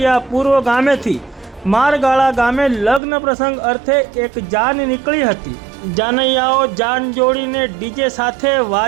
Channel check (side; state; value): left; drops out; at 3.0 s